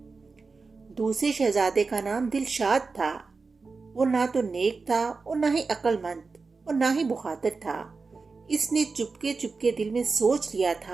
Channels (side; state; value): left; quieter; 4.3 dB